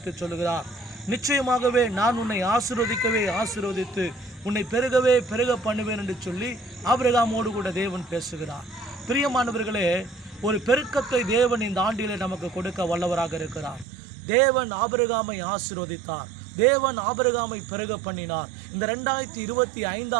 சொல்லுகிறார். நிச்சயமாகவே நான் உன்னை ஆசீர்வதித்து உன்னை பெருக பண்ணுவேன் என்று சொல்லி ஆபிரகாமோடு கூட தேவன் பேசுகிறார். பிரியமானவர்களே, ஒரு பெருக்கத்தை தேவன் இந்த ஆண்டிலே நமக்கு கொடுக்க வல்லவராக இருக்கிறார். தேவன் ஆபிரகாமை ஆசீர்வதித்தார். தேவன் ஆபிரகாமை பெருக பண்ணினார். இந்த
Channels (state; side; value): drops out; left; at 13.9 s